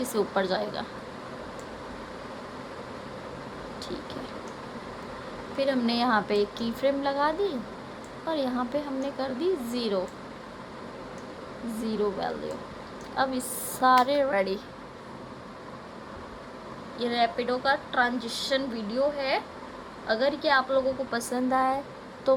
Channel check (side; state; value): both; identical; correlation 1.00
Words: से ऊपर जाएगा, ठीक है। फिर हमने यहाँ पे एक की फ्रेम लगा दी और यहाँ पे हमने कर दी 0 वैल्यू। अब इस सारे रेडी। ये रैपिडो का ट्रांजिशन वीडियो है। अगर ये आप लोगों को पसंद आए तो